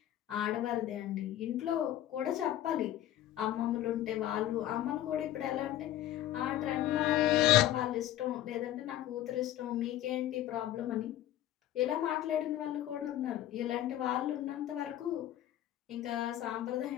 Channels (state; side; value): quieter; right; 12.7 dB